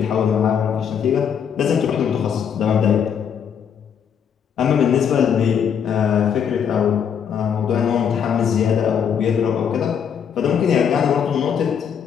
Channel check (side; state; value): right; quieter; 7.8 dB